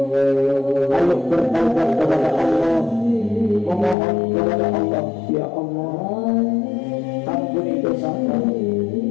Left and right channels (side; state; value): right; drops out; at 4.0 s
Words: ayo bertaubat kepada Allah, memohon kepada Allah. Ya Allah, ampuni dosa kami,